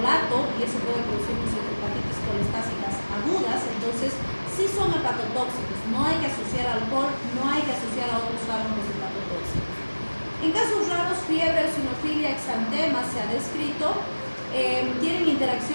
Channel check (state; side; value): inverted; both; correlation -1.00